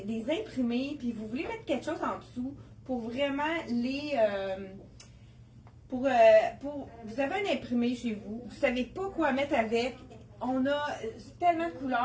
imprimés, puis vous voulez mettre quelque chose en dessous pour vraiment vous avez un imprimé chez vous, vous ne savez pas quoi mettre avec. On a tellement de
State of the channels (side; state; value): both; identical; correlation 1.00